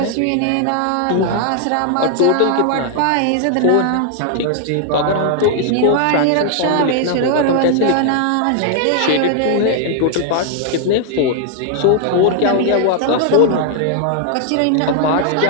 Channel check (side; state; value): both; different; correlation 0.00